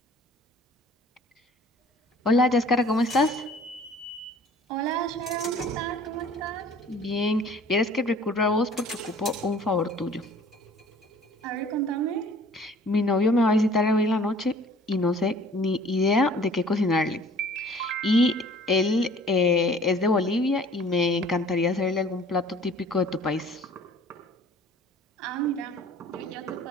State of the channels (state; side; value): normal; both; correlation 0.51